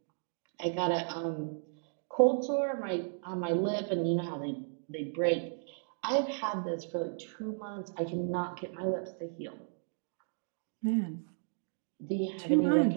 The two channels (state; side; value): silent; left; digital silence